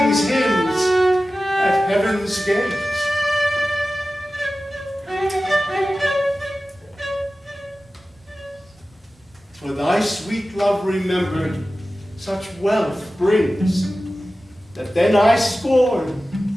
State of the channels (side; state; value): both; normal; correlation 0.95